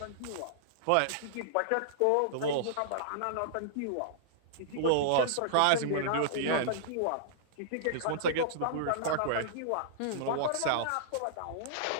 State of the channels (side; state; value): both; different; correlation -0.02